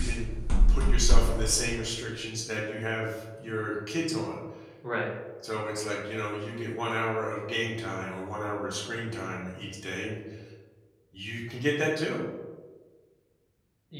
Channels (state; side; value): identical; both; correlation 1.00